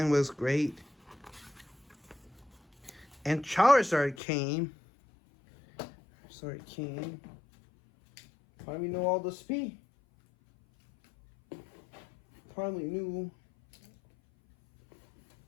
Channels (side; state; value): right; drops out; at 4.2 s